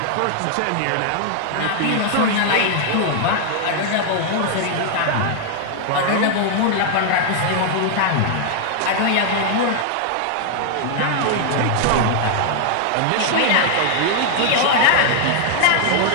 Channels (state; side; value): different; both; correlation 0.00